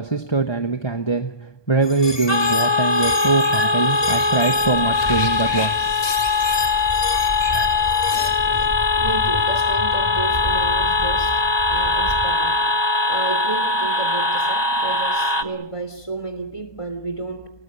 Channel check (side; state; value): right; late; 1.2 ms